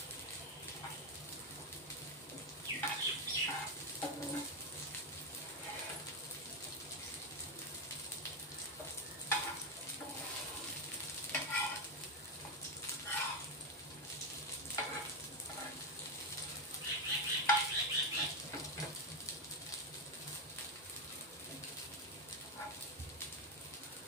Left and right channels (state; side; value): normal; both; correlation 0.08